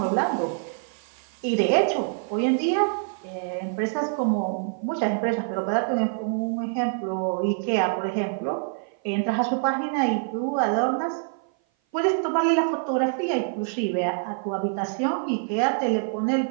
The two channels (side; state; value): left; silent; 56 dB below the other